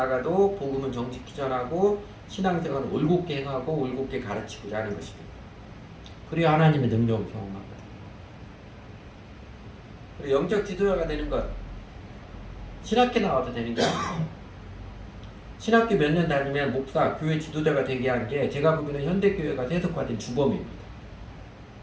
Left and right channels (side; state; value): both; identical; correlation 1.00